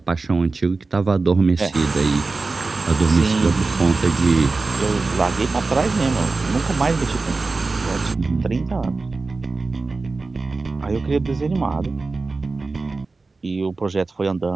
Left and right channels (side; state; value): left; quieter; 3.8 dB